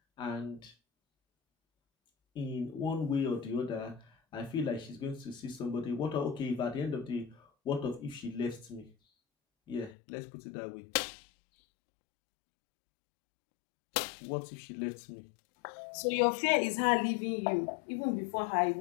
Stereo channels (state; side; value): drops out; right; at 10.0 s